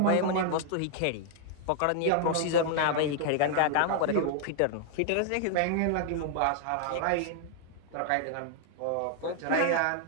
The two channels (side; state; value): both; different; correlation 0.00